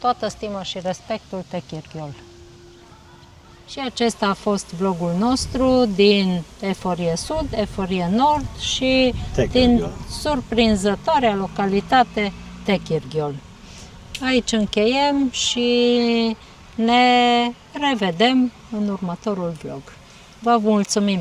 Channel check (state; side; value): identical; both; correlation 1.00